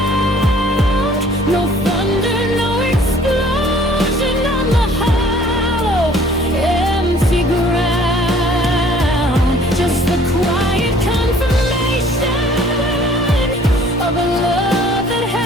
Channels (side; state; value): both; normal; correlation 0.55